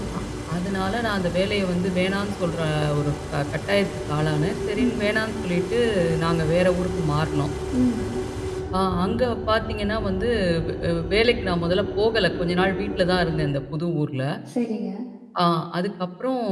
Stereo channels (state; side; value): identical; both; correlation 1.00